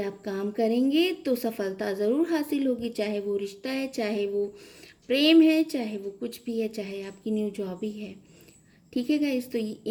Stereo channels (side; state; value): both; identical; correlation 1.00